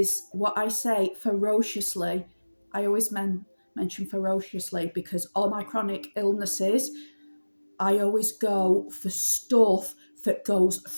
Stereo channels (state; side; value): inverted; both; correlation -1.00